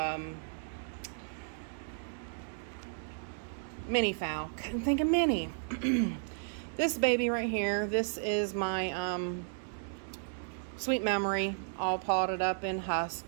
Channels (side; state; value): left; silent; digital silence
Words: mini phal. Couldn't think of mini. This baby right here, this is my Sweet Memory, all potted up in